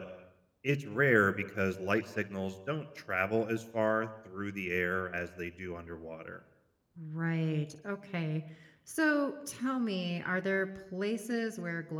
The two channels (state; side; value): identical; both; correlation 1.00